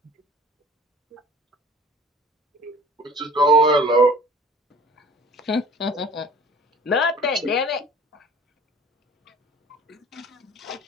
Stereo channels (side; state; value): both; normal; correlation 0.47